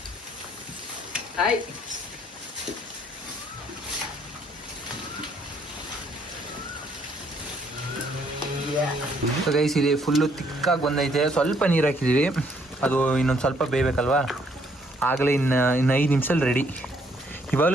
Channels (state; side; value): normal; both; correlation 0.67